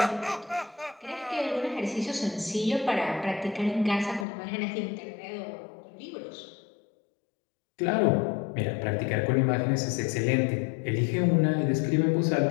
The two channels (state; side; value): drops out; right; at 4.2 s